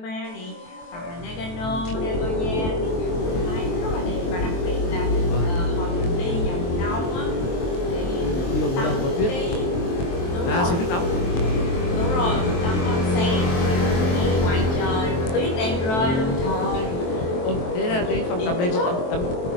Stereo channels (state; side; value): late; right; 23 ms